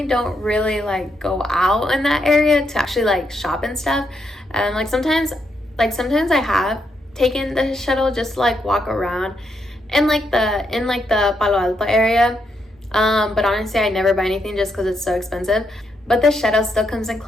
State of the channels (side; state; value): both; normal; correlation 0.79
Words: don't really like go out in that area to actually like shop and stuff. Like sometimes I have taken the shuttle just to like walk around in like the Palo Alto area, but honestly I never buy anything just because it's so expensive. But the shuttle still comes in